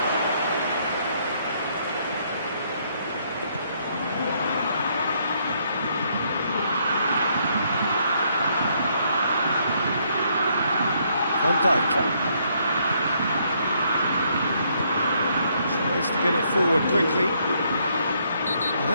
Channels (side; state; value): both; inverted; correlation -0.71